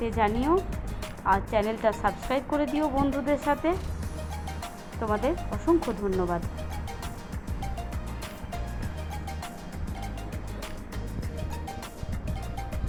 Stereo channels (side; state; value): both; identical; correlation 1.00